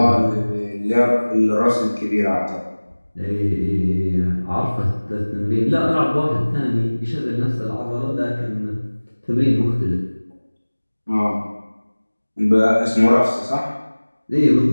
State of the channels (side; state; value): both; inverted; correlation -1.00